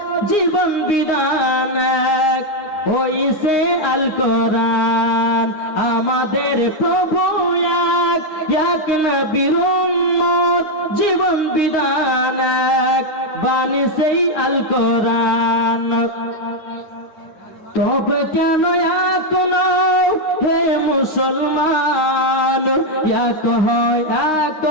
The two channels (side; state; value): right; late; 9.7 ms